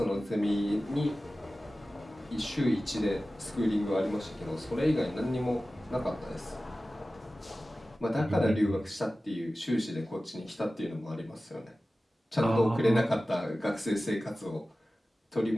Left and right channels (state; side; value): normal; both; correlation 0.96